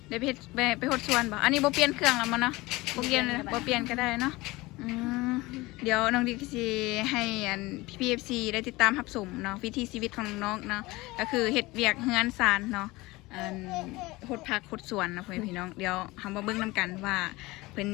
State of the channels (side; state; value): right; quieter; 21.1 dB